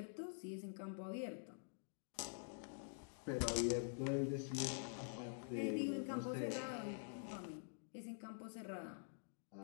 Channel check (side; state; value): right; silent; digital silence